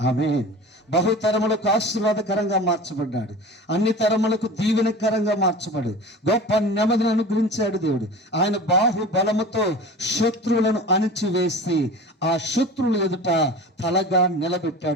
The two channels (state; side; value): normal; both; correlation 0.36